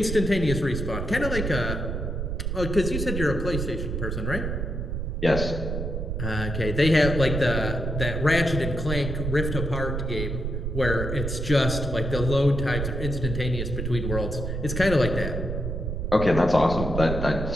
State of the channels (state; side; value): noise; right; rumble, 3 dB below the sound